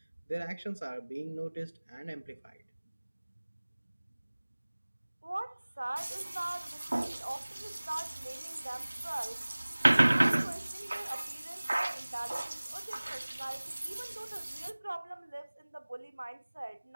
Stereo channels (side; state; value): both; inverted; correlation -1.00